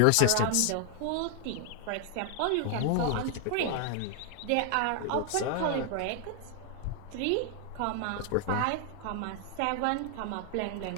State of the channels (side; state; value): both; different; correlation 0.00